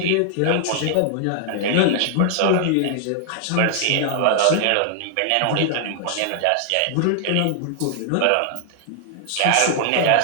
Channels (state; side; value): different; both; correlation 0.00